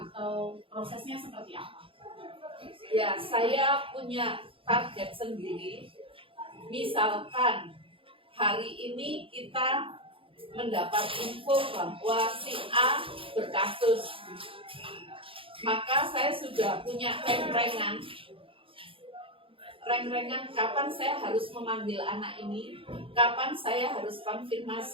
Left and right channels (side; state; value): left; late; 0.26 ms